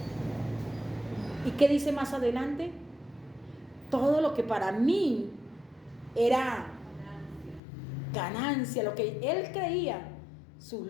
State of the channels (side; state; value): right; drops out; at 7.6 s